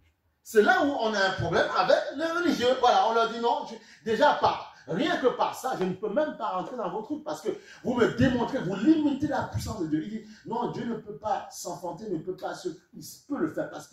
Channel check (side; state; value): both; identical; correlation 1.00